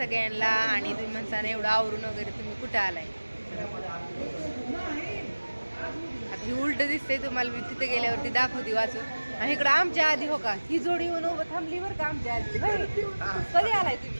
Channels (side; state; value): both; inverted; correlation -1.00